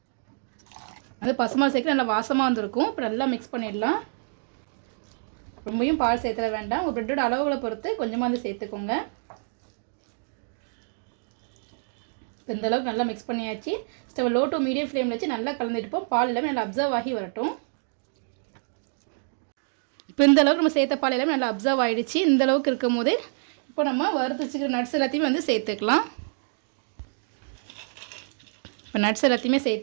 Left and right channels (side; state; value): left; silent; digital silence